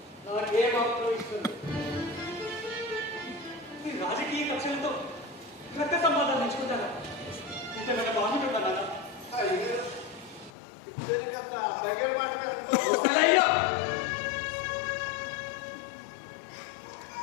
నాకేమాత్రం ఇష్టం లేదు. ఈ రాజకీయ కక్షలతో రక్త సంబంధాలు నేర్చుకుంటారా? ఇంతేమైనా బాగుంటుందా నాన్న?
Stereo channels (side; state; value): right; drops out; at 10.5 s